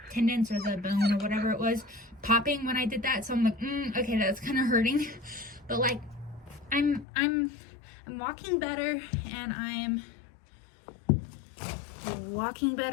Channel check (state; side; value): drops out; right; at 7.1 s